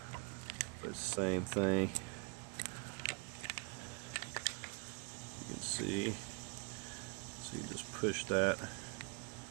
but it's the same thing. You can see. So you just push that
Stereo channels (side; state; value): left; quieter; 33.3 dB